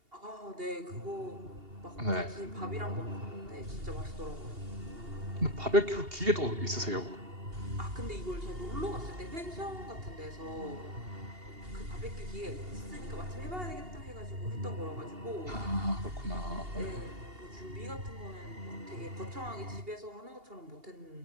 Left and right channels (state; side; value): late; left; 2.8 ms